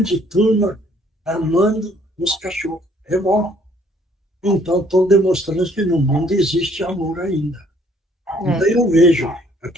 turma amando os cachorros. É bom. Então, estão demonstrando que no mundo existe amor ainda. Então, eu vejo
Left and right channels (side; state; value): both; normal; correlation 0.62